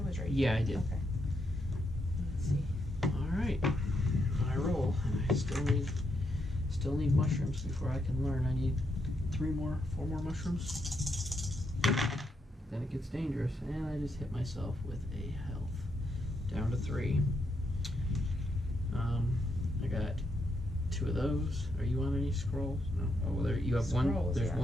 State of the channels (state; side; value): normal; both; correlation 0.80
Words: was right. Yeah, I did. Okay. Let's see. All right. I roll, and I still need mushrooms before I can learn. I need 4 more mushrooms. Then it gets dangerous, and I just hit myself with a health down to 3. I got 2 of those. Are you on any scrolls? No. Oh, well, there you have Scrolls, 1. There's yeah.